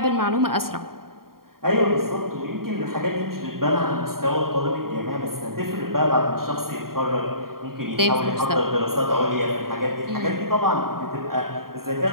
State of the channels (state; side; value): late; left; 0.92 ms